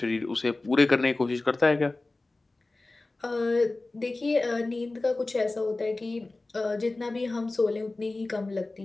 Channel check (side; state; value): right; quieter; 3.1 dB